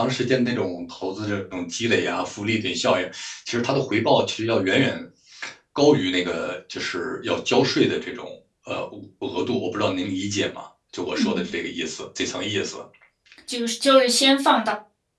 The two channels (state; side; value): identical; both; correlation 1.00